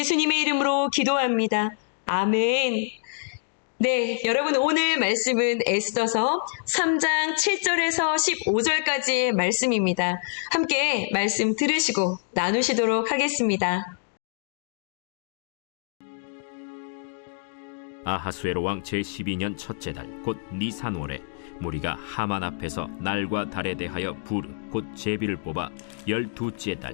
이름으로 기도합니다. 아멘. 네, 여러분 오늘 말씀은 에스더서 3장 7절에서 15절까지의 말씀입니다. 함께 말씀 들으시고 나누시도록 하겠습니다. 아하수에로 왕 제12년 첫째 달 곧 니산월에 무리가 하만 앞에서 날과 달에 대하여 부르 곧 제비를 뽑아 12째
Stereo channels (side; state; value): right; silent; digital silence